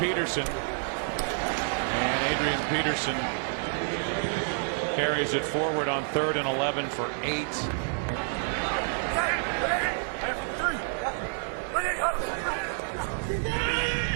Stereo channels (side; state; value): left; silent; 59 dB below the other